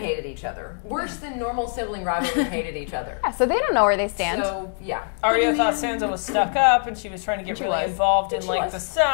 each other. Worse than normal sibling rivalries hated each other. Yeah, so they don't know where they stand. So, yeah. Arya thought Sansa was stuck up, and she was trying to get She really was. involved in She like was. the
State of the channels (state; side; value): silent; right; 63 dB below the other